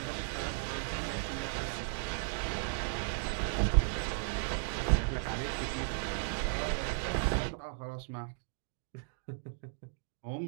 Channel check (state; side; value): silent; left; 54 dB below the other